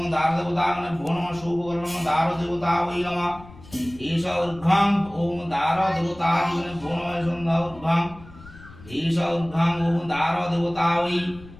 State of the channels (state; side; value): noise; left; rumble, 20 dB below the sound